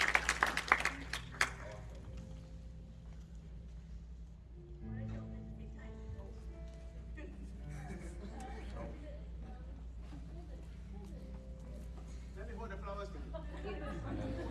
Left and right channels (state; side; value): identical; both; correlation 1.00